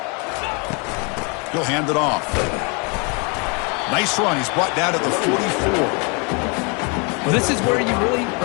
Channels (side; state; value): right; quieter; 33.1 dB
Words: He'll hand it off. Nice run. He's brought down to the 44. Well, this is where you really